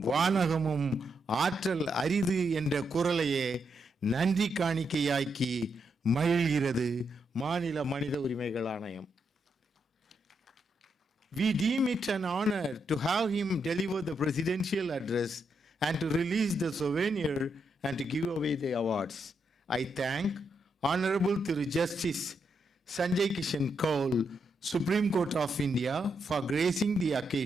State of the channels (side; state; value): both; normal; correlation 0.81